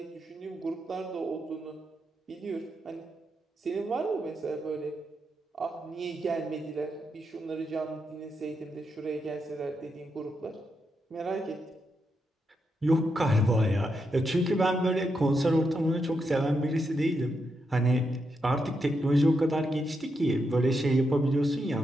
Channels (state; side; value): normal; both; correlation 0.83